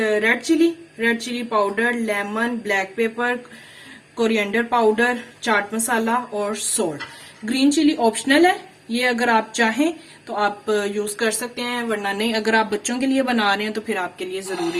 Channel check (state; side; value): identical; both; correlation 1.00